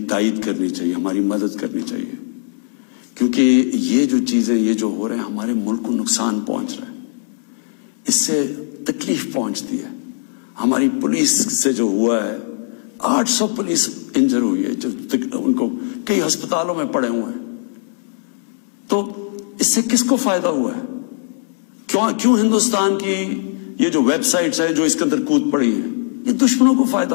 تائید کرنی چاہیے, ہماری مدد کرنی چاہیے, کیونکہ یہ جو چیزیں یہ جو ہو رہے ہیں ہمارے ملک کو نقصان پہنچ رہا ہے, اس سے تکلیف پہنچتی ہے. ہماری پولیس سے جو ہوا ہے, 800 پولیس انجر ہوئی ہے, جو ان کو کئی ہسپتالوں میں پڑے ہوئے ہیں. تو اس سے کس کو فائدہ ہوا ہے؟ کیوں ہندوستان کی یہ جو ویب سائٹس ہیں جو اس کے اندر کود پڑی ہیں, یہ دشمنوں کو فائدہ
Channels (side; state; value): right; silent; 66 dB below the other